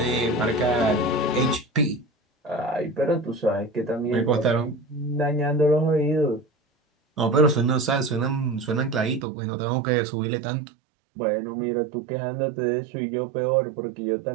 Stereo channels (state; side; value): drops out; left; at 9.2 s